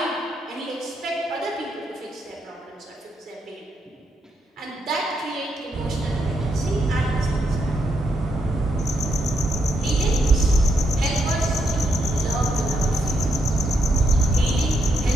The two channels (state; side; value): normal; both; correlation 0.79